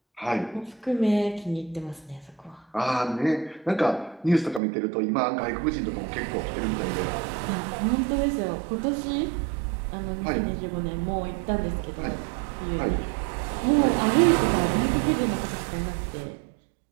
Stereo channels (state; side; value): drops out; left; at 4.6 s